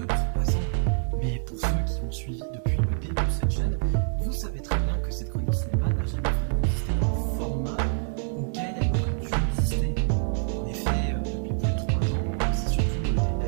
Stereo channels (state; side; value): silent; left; 60 dB below the other